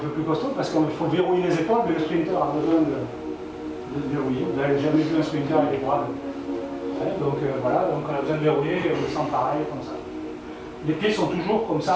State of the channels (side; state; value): both; identical; correlation 1.00